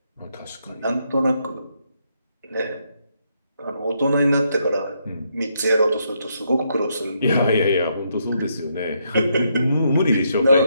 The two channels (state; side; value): inverted; both; correlation -0.77